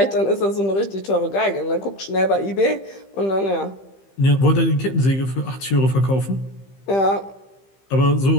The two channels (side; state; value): right; late; 15 ms